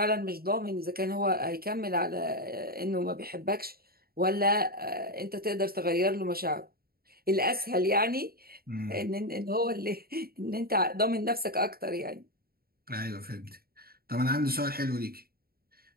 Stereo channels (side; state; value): left; late; 0.44 ms